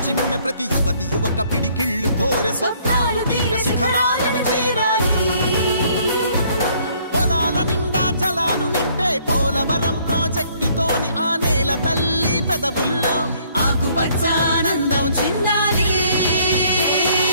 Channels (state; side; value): inverted; both; correlation -0.63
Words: చిమ్మె ప్రతి యువతి యువక పిడికిళ్ళు కోరే స్వప్నాలు తీర శిఖరాలను చేరాలి పొలాల నిండా జలాలు నింపే పోలవరం ప్రాజెక్టుతోని ఆ నేల తల్లి పెదవుల్లో ఆకుపచ్చానందం చిందాలి